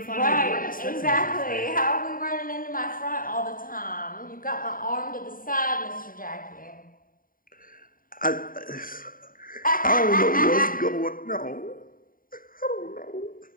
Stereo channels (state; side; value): late; right; 0.41 ms